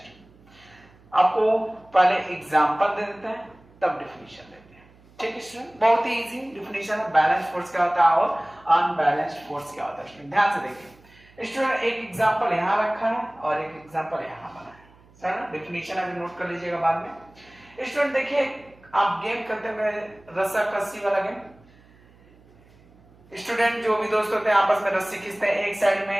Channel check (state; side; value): noise; right; hum, 27 dB below the sound